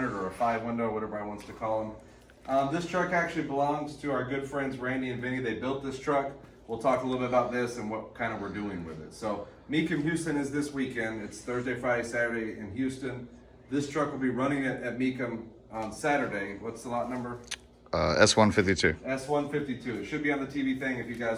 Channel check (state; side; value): identical; both; correlation 1.00